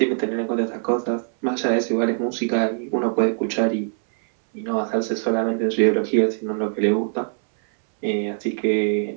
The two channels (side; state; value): left; silent; 64 dB below the other